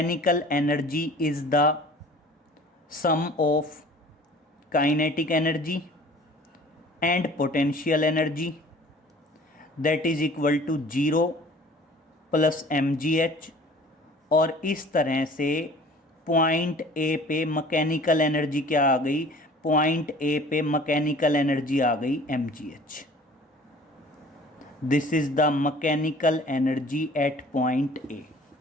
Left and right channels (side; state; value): both; normal; correlation 0.48